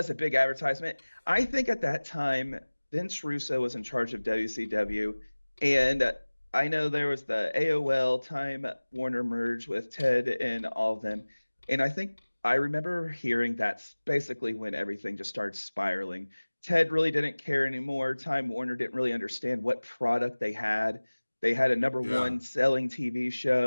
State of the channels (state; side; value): inverted; both; correlation -1.00